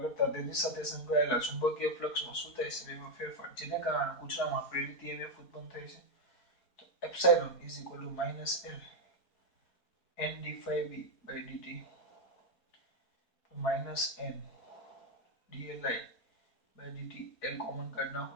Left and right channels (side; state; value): right; late; 4.3 ms